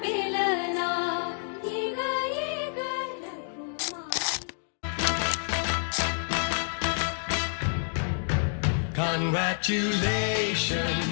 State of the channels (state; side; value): silent; right; digital silence